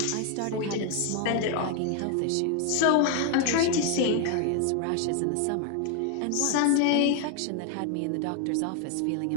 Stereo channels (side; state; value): both; different; correlation 0.01